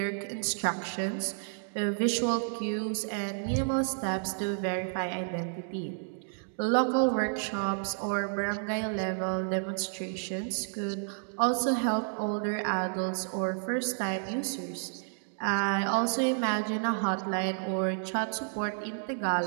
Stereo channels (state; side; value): silent; left; digital silence